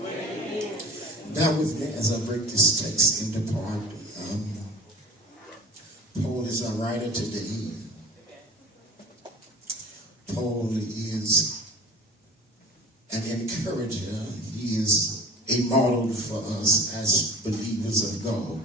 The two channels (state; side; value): normal; both; correlation 0.40